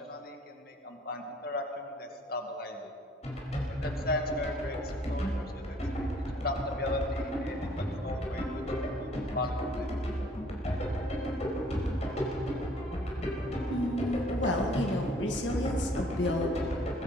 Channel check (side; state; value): both; normal; correlation 0.59